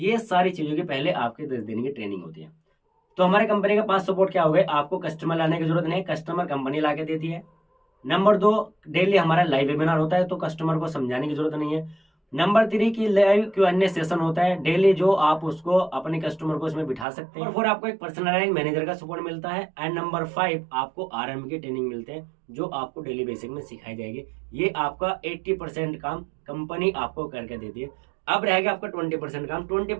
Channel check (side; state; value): left; drops out; at 17.1 s